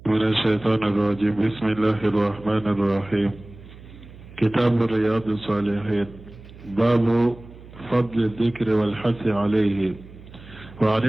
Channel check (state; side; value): noise; right; hum, 19 dB below the sound